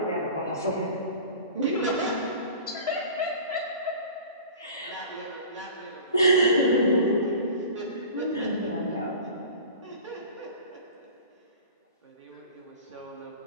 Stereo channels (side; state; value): both; inverted; correlation -0.40